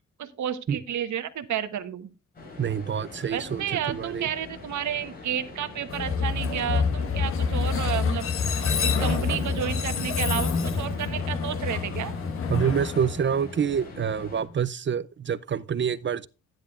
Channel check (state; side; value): normal; both; correlation 0.33